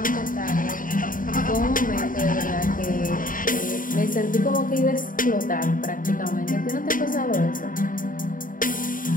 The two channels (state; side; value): late; right; 0.39 ms